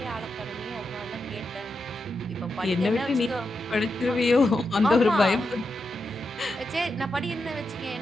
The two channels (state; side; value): normal; both; correlation 0.87